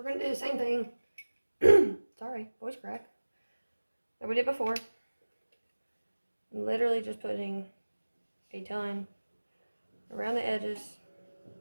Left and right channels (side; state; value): both; inverted; correlation -1.00